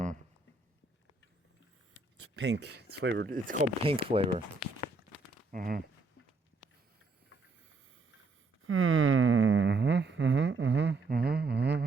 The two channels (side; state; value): left; quieter; 3.8 dB